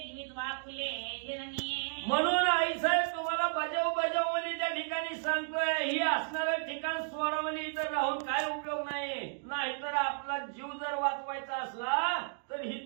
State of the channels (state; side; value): silent; left; digital silence